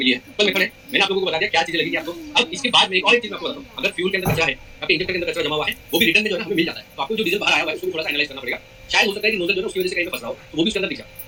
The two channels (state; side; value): identical; both; correlation 1.00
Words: है। कल मेथड है, मैंने आप लोगों को बता दिया क्या चीजें लगी आपको। अब इसके बाद में एक और चीज मैं आपको बताता हूँ, अगर फ्यूल के अंदर कचरा है, आपके इंजेक्टर के अंदर कचरा जमा हुआ है, वो भी रिटर्न में जो है हमें मिल जाता है। तो आपको जो डीजल बाहर आया हुआ है उसको थोड़ा सा एनालाइज करना पड़ेगा। शायद हो सकता है कि नोजल जो है उसकी वजह से कहीं फंस रहा हो, तो वो भी उसके अंदर दिख जाए।